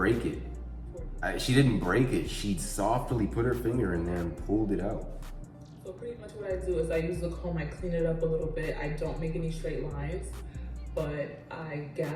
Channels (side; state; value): both; identical; correlation 1.00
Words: it. She softly put her finger in there and pulled it out. So pretty much what I do is I use the comb, I clean it up a little bit. I don't make any straight lines, but I